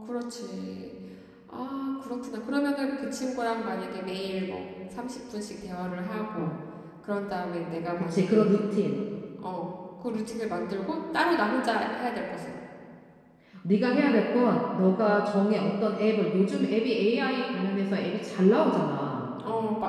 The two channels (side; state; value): both; identical; correlation 1.00